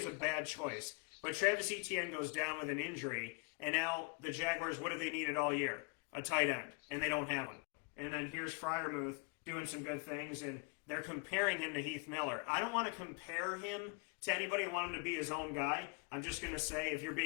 a bad choice. But Travis Etienne goes down with an injury, and now the Jaguars, what have they needed all year? A tight end, and they don't have one. And then here's Freiermuth doing some good things, and they're comparing him to Heath Miller. I don't want to compare him to anybody. I want him to be his own guy. I'm just going to say if you're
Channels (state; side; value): quieter; right; 34.4 dB